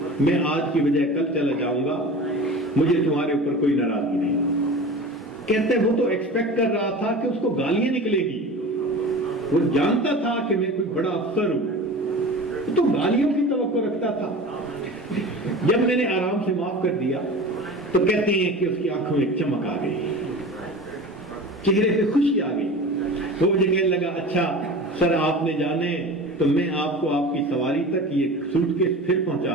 میں آج کی بجائے کل چلا جاؤں گا، مجھے تمہارے اوپر کوئی ناراضگی نہیں۔ کہتے وہ تو ایکسپیکٹ کر رہا تھا کہ اس کو گالیاں نکلے گی، وہ جانتا تھا کہ میں کوئی بڑا افسر ہوں، تو گالیوں کی توقع رکھتا تھا۔ جب میں نے آرام سے معاف کر دیا تو کہتے ہیں کہ اس کی آنکھوں میں چمک آ گئی، چہرے پہ خوشی آ گئی۔ وہ مجھے کہنے لگا اچھا سر آپ نے جانے تو میں آپ کو آپ کی سواری تک یہ سوٹ کیس پھر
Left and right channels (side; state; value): both; normal; correlation 0.35